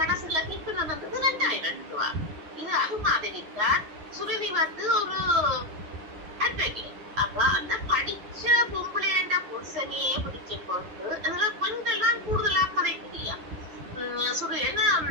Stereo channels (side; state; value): left; late; 9.8 ms